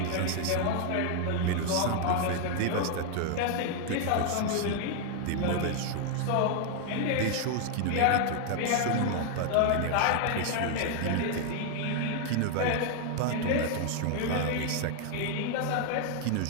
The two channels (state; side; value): different; both; correlation 0.00